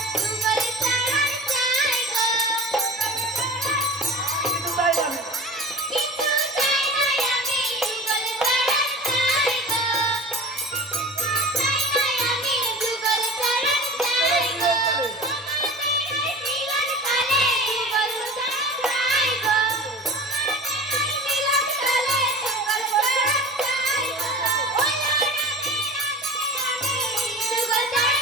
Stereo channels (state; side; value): normal; both; correlation 0.37